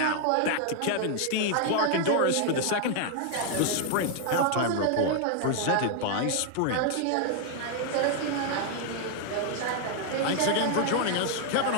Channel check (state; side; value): different; both; correlation 0.00